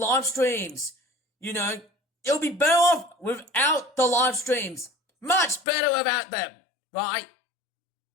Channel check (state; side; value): drops out; right; at 5.7 s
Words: streams. It'll be better off without the live streams. Much better without them, right?